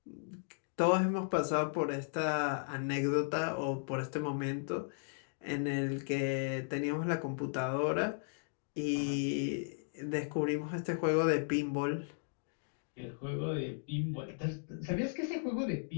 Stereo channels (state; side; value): silent; right; digital silence